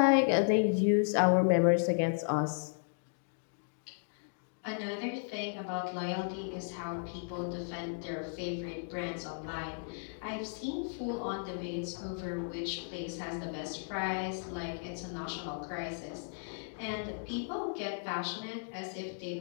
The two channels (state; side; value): silent; right; digital silence